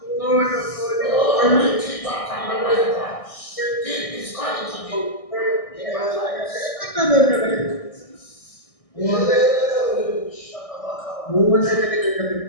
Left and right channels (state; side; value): late; right; 1.6 ms